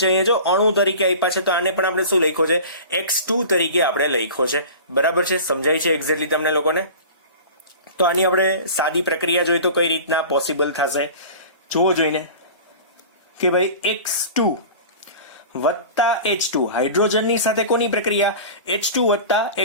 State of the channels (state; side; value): inverted; both; correlation -0.37